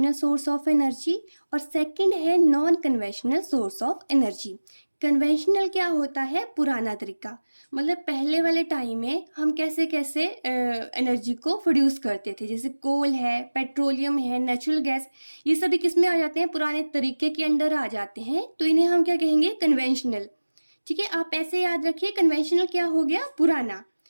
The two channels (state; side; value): inverted; both; correlation -1.00